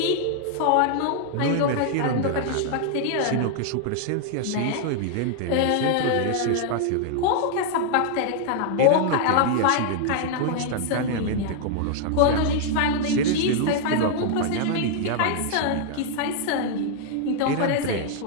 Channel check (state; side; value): different; both; correlation 0.00